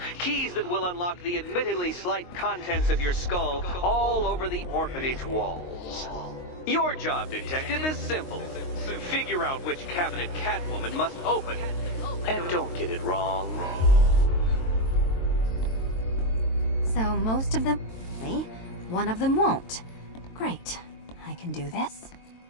Keys that will unlock the admittedly slight contents of your skull all over the orphanage walls. Your job, Detective, is simple. Figure out which cabinet Catwoman must open. And don't get it wrong. So most of them, one of them won't. Great. I can do this.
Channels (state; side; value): late; right; 22 ms